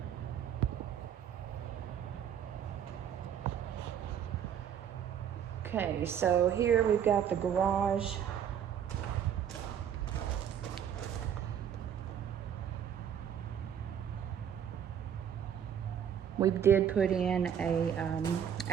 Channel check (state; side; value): quieter; left; 8.9 dB